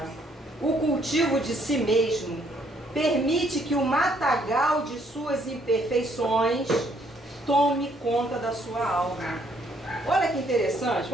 o cultivo de si mesmo permite que o matagal de suas imperfeições tome conta da sua alma. Olha que interessante,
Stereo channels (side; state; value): both; normal; correlation 0.68